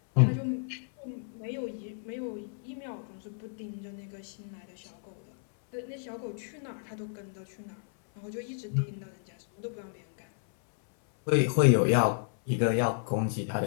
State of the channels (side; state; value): right; silent; 57 dB below the other